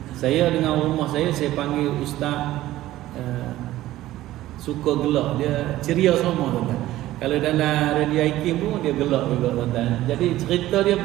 Saya dengan rumah saya panggil Ustaz suka gelak, dia ceria semua tuan-tuan. Kalau dalam radio IKIM pun dia gelak juga tuan-tuan. Jadi cerita dia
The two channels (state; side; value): quieter; left; 15.3 dB